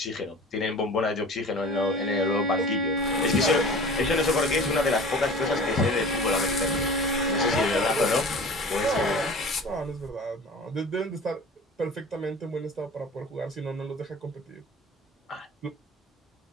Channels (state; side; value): normal; both; correlation 0.40